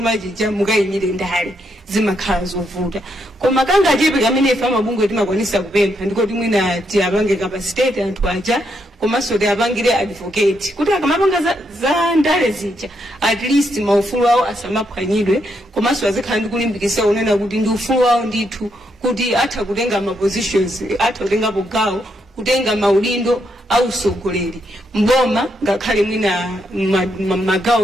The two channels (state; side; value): normal; both; correlation 0.78